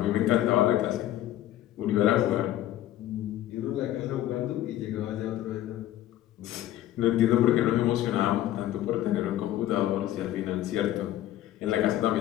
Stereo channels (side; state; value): right; quieter; 13.3 dB